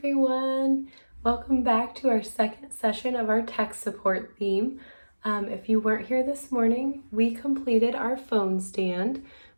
Welcome back to our second session of our tech support theme. If you weren't here this morning, we completed our phone stand,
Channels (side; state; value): both; inverted; correlation -1.00